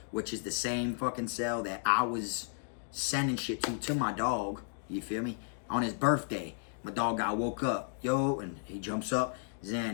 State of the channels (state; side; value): silent; right; digital silence